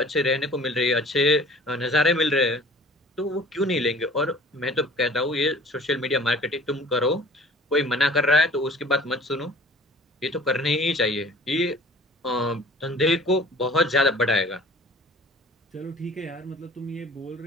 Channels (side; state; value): both; normal; correlation 0.47